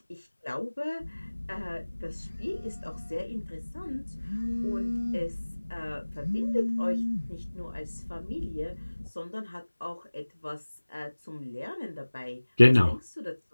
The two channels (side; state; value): both; inverted; correlation -1.00